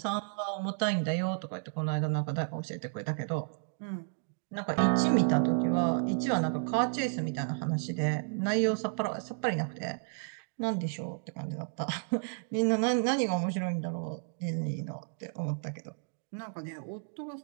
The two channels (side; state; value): left; silent; digital silence